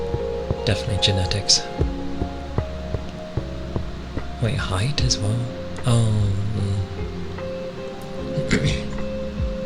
Definitely genetics. Wait, height as well? Oh.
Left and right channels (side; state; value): both; identical; correlation 1.00